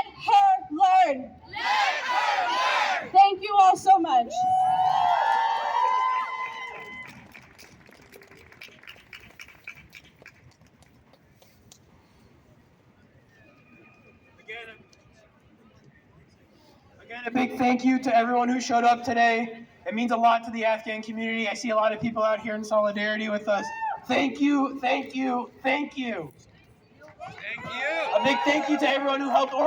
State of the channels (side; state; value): both; identical; correlation 1.00